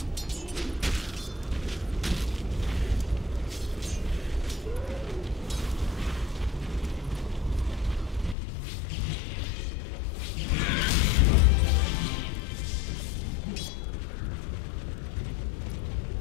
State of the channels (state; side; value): drops out; right; at 8.3 s